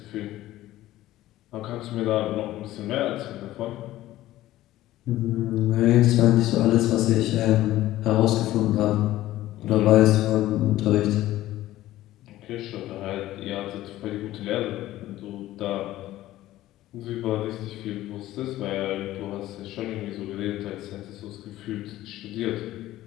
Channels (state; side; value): quieter; right; 15.2 dB